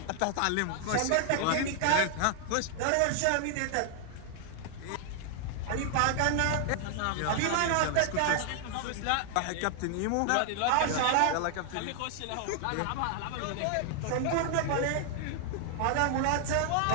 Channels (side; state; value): both; different; correlation 0.00